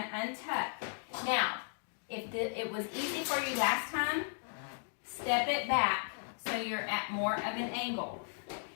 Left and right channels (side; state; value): right; silent; digital silence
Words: untuck. Now, if it was easy for you last time, step it back so you're at more of an angle